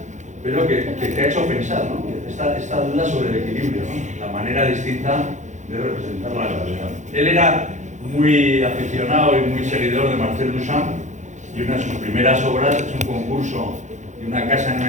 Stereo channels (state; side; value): late; left; 0.35 ms